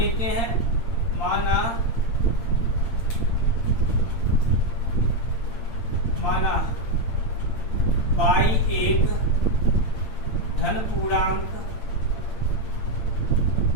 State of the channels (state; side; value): late; right; 8.8 ms